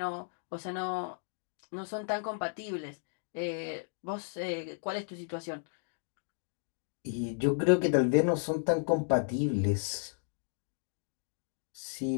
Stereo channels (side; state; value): right; silent; digital silence